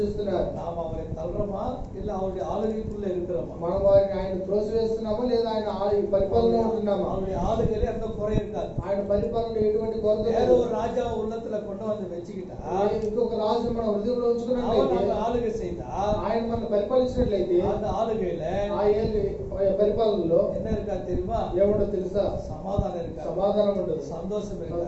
நாம் அவரை தள்ளுறோமா இல்ல அவருடைய ஆளுகைக்குள்ள இருக்கிறோமா? మనం వారిని ఆయన త్రోసివేస్తున్నామా లేదా ఆయన పరిపాలనలో ఉంటున్నామా? அவருடைய ஆளுகையில எந்த குறை இருக்காது. ఆయన పరిపాలనలో ఎటువంటి కొరత வேற లేదు. ஒரு ராஜா உள்ளத்துல கொண்டு வந்து வச்சுக்கிட்டா ఇంకొక రాజు మన హృదయంలో அவன் ఉంచుకున్నట్లయితే, நம்ம ஆளுகை செய்தா ఆయన మనల్ని పరిపాలించినట్లయితే, அந்த ఆளுகையில ఆ పరిపాలనలో என்ன இருக்கா தெரியுமா? ఏముండో తెలుసా? சமாதானம் இருக்கா, సమాధానం ఉండదు, சந்தோஷம் இருக்கா,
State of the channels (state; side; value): identical; both; correlation 1.00